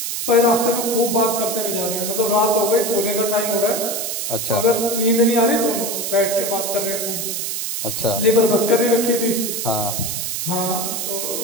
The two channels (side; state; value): right; noise; hiss, 3 dB below the sound